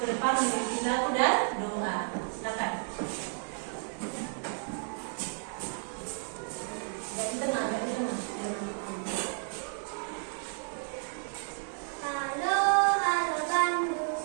depan memiliki lagu dan doa. Silakan. Di tengah, di tengah. Halo, halo Bandung.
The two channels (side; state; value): left; silent; 56 dB below the other